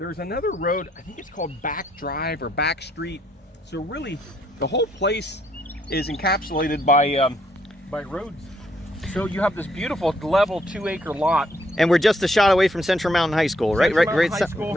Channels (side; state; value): both; normal; correlation 0.71